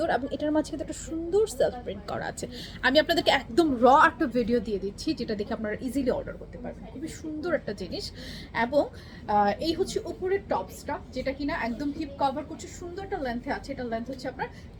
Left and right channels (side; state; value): both; identical; correlation 1.00